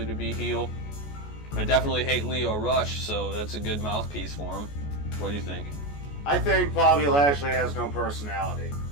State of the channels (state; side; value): late; right; 14 ms